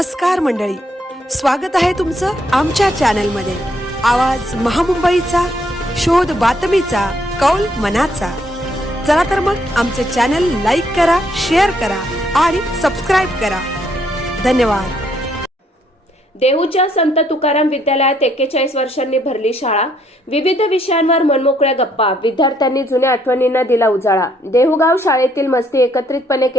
मंडळी, स्वागत आहे तुमचं आमच्या चॅनलमध्ये. आवाज महामुंबईचा, शोध बातमीचा, कौल मनाचा. चला तर मग आमचे चॅनल लाईक करा, शेअर करा आणि सबस्क्राईब करा. धन्यवाद. देहूच्या संत तुकाराम विद्यालयात 41 वर्षांनी भरली शाळा. विविध विषयांवर मनमोकळ्या गप्पा. विद्यार्थ्यांनी जुन्या आठवणींना दिला उजाळा. देहूगाव शाळेतील मस्ती, एकत्रितपणे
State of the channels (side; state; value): both; normal; correlation 0.70